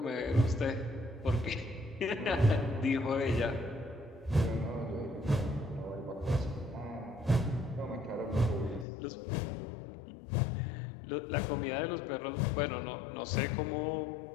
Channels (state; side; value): drops out; right; at 8.8 s